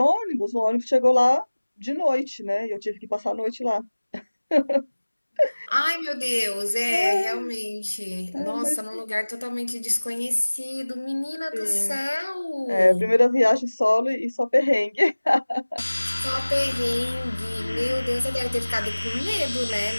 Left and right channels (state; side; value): inverted; both; correlation -1.00